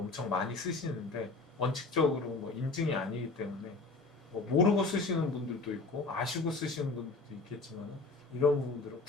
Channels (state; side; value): quieter; right; 3.8 dB